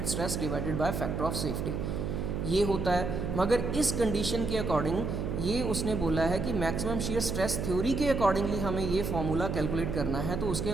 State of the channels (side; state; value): right; noise; hum, 2 dB below the sound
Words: stress divided by factor of safety, ये होता है। मगर इस कंडीशन के अकॉर्डिंग ये उसने बोला है कि मैक्सिमम शियर स्ट्रेस थ्योरी के अकॉर्डिंगली हमें ये फॉर्मूला कैलकुलेट करना है। तो उसके